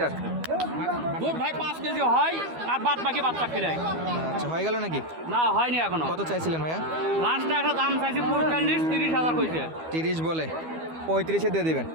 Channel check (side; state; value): left; late; 12 ms